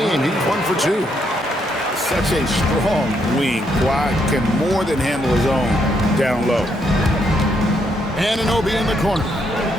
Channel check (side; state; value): both; normal; correlation 0.75